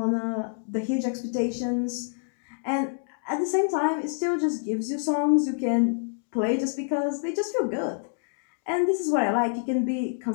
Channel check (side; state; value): right; silent; digital silence